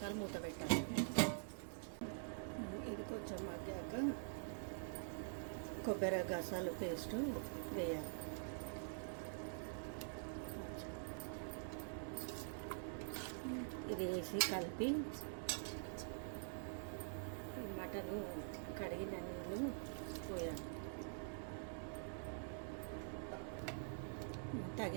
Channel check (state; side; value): silent; left; digital silence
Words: మూత పెట్టాలి. ఇది కొంచెం మగ్గాక కొబ్బరి గసాలు పేస్టు వేయాలి. ఇది వేసి కలిపి మటను కడిగిన నీళ్ళు పోయాలి.